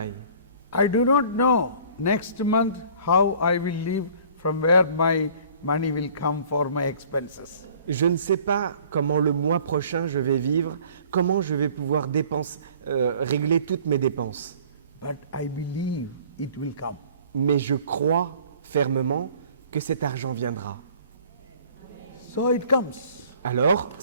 ». I do not know next month how I will live, from where my money will come for my expenses. Je ne sais pas comment le mois prochain je vais vivre, comment je vais pouvoir régler toutes mes dépenses. But I believe it will come. Mais je crois fermement que cet argent viendra. So it comes. Alors,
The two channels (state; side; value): inverted; both; correlation -0.52